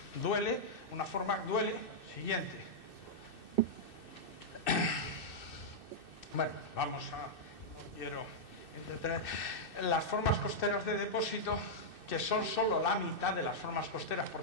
duele. Una forma duele. Siguiente. Bueno, vamos a... No quiero entretener. Las formas costeras de depósito, que son solo la mitad de las formas costeras,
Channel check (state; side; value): late; right; 2.6 ms